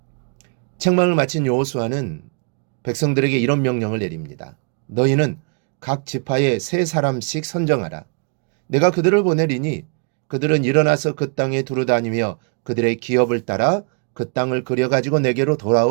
책망을 마친 여호수아는 백성들에게 이런 명령을 내립니다. 너희는 각 지파에 3사람씩 선정하라. 내가 그들을 보내리니 그들은 일어나서 그 땅에 두루다니며 그들의 기업을 따라 그 땅을 그려가지고 내게로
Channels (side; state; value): left; quieter; 38.1 dB